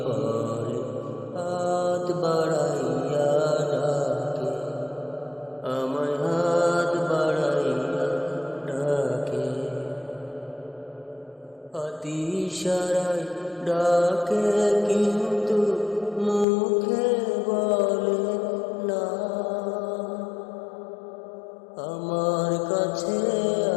পড়ে হাত বাড়াইয়া ডাকে, আমায় হাত বাড়াইয়া ডাকে। ইশারায় ডাকে কিন্তু মুখে বলে না, আমার কাছে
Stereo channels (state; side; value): drops out; right; at 16.4 s